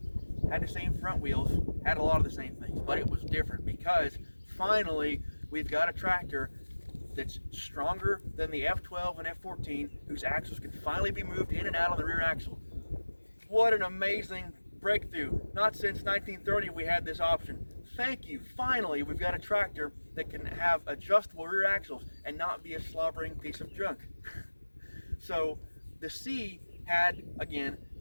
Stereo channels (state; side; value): inverted; both; correlation -1.00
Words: front wheels, had a lot of the same things, but it was different because finally we've got a tractor that's stronger than the F12 and F14, whose axles can finally be moved in and out on the rear axle. What an amazing breakthrough. Not since 1930 we had this option. Thank you. Finally, we've got a tractor that can have adjustable rear axles and not be a slobbering piece of junk. So the C had, again,